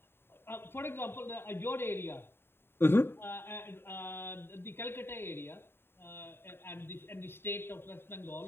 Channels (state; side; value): late; right; 0.11 ms